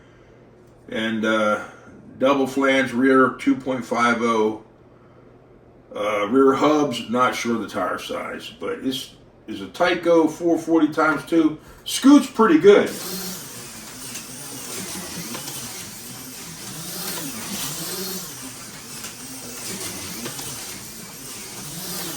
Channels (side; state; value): both; identical; correlation 1.00